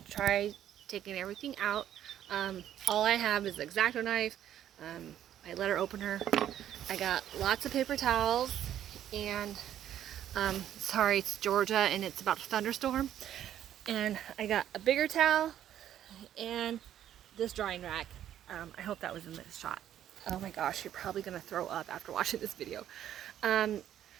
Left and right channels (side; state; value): left; quieter; 11.0 dB